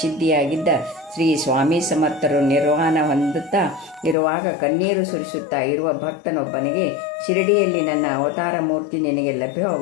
ಶ್ರೀ ಸ್ವಾಮಿ ಸಮರ್ಥರು ನಿರ್ವಾಣ ಹೊಂದುತ್ತಾ ಇರುವಾಗ ಕಣ್ಣೀರು ಸುರಿಸುತ್ತಾ ಇರುವ ಭಕ್ತನೊಬ್ಬನಿಗೆ, ಶಿರಡಿಯಲ್ಲಿ ನನ್ನ ಅವತಾರ ಮೂರ್ತಿ ನಿನಗೆ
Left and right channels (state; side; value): drops out; right; at 4.2 s